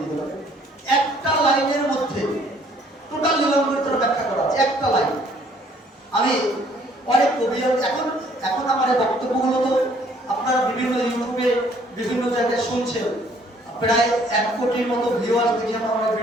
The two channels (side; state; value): both; normal; correlation 0.61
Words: হবে, একটা লাইনের মধ্যে টোটাল লীলামৃতের ব্যাখ্যা করা আছে, একটা লাইন। আমি অনেক কবি, এখন আমার এই বক্তব্যগুলো তো আপনারা বিভিন্ন ইউটিউবে বিভিন্ন জায়গায় শুনছেন, প্রায় 1 কোটির মতো ভিউয়ার্স দেখি আমার